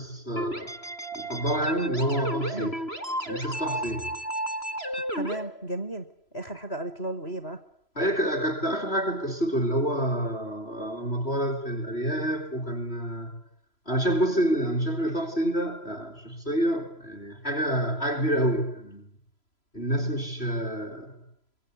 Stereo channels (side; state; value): right; late; 3.0 ms